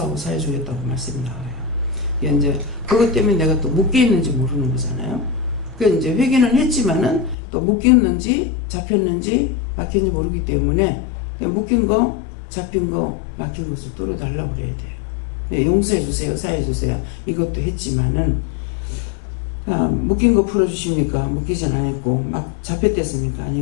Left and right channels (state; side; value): drops out; right; at 7.4 s